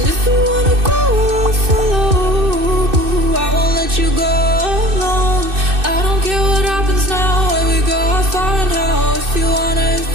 if you wanna go, I'll follow. I won't let you go alone. I don't care what happens now, where we go, how far and how. If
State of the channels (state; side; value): late; left; 2.6 ms